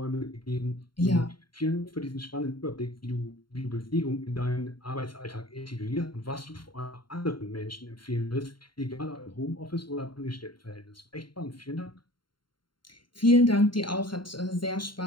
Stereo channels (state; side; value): late; right; 0.72 ms